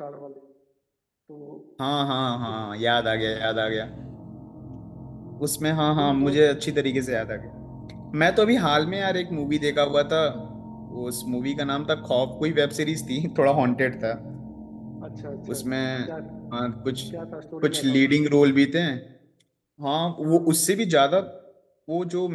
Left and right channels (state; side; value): identical; both; correlation 1.00